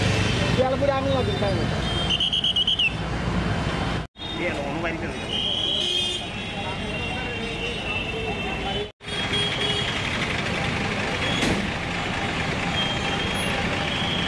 আমি লাগবে তাই না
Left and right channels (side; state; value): both; identical; correlation 1.00